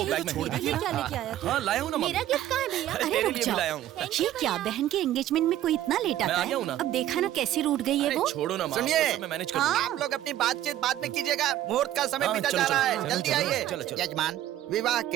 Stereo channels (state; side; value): quieter; left; 12.9 dB